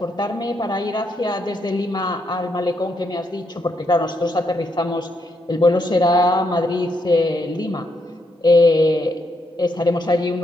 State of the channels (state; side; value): normal; both; correlation 0.78